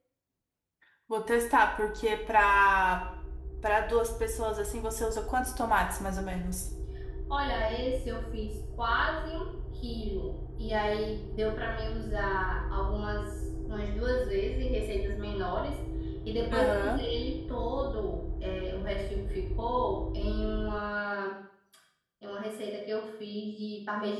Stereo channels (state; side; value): identical; both; correlation 1.00